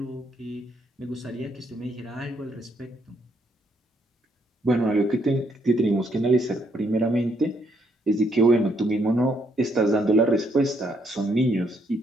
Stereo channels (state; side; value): normal; both; correlation 0.73